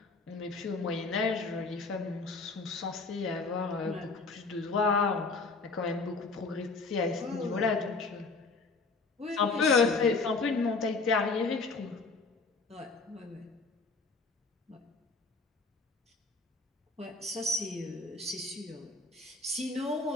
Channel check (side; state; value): right; quieter; 3.9 dB